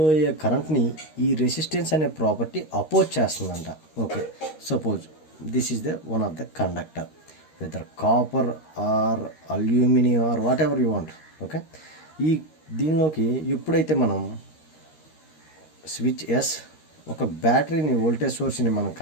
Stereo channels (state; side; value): late; right; 13 ms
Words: అయ్యే కరెంట్ని ఈ resistance అనే ప్రాపర్టీ అపోజ్ చేస్తుందంట. Okay, suppose this is the one of the conductor, whether copper or aluminium or whatever you want. Okay, ఈ దీనిలోకి ఎప్పుడైతే మనం స్విచ్ ఎస్ ఒక బ్యాటరీని వోల్టేజ్ సోర్స్ని మనం